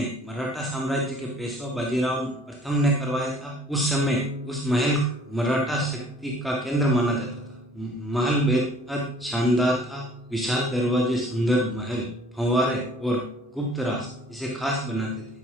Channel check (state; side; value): normal; both; correlation 0.54